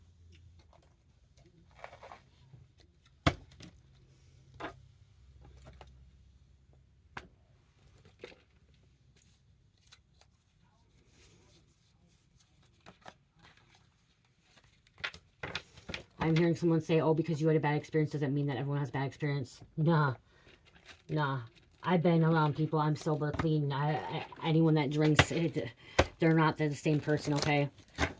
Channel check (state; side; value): identical; both; correlation 1.00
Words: I'm hearing someone say, oh, because you had a bad experience doesn't mean that everyone has a bad experience. Nah. I've been around people. I'm sober, clean. Anyone that drinks, they're not the same person, okay?